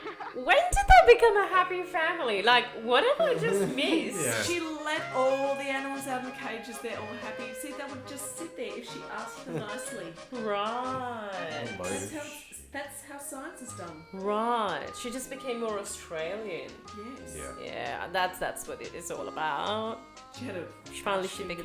When did they become a happy family? Like, what have I just missed? Yeah. She let all the animals out of the cages. They're all happy. See, they would just sit there if she asked them nicely. Right. That's how science is done. Right. She just became more Australian. Yes. Yeah. Yeah, that's what it is all about. She had a. Finally, she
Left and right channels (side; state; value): both; identical; correlation 1.00